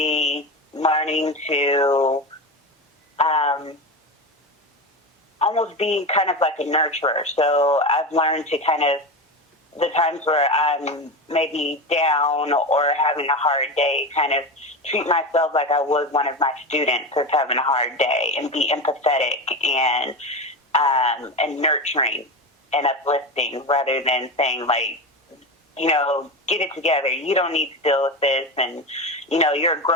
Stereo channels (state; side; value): normal; both; correlation 0.22